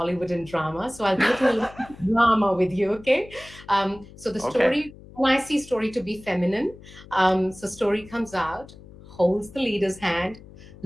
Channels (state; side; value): noise; left; hum, 20 dB below the sound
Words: and drama. So I'll go to a little drama with you, okay? So the Okay. story, when I see story to be feminine, so story comes out, holds the leader's hand,